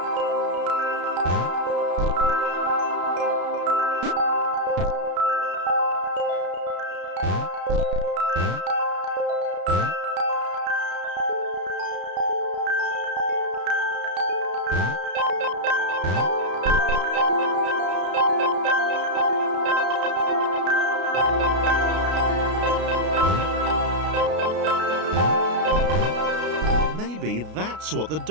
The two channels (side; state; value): left; late; 33 ms